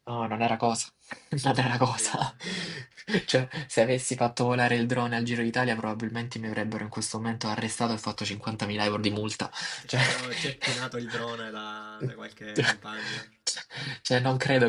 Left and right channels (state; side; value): identical; both; correlation 1.00